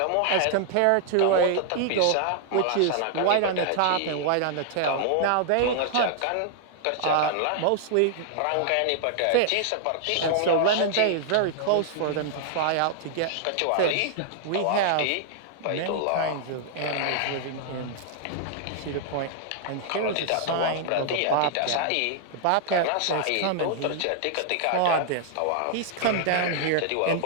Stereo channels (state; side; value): different; both; correlation -0.01